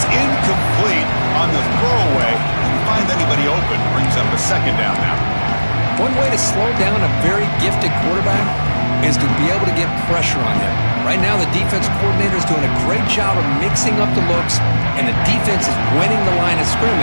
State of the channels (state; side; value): inverted; both; correlation -1.00